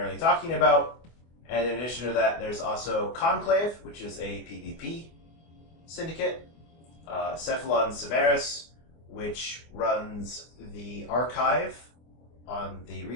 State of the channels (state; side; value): late; right; 24 ms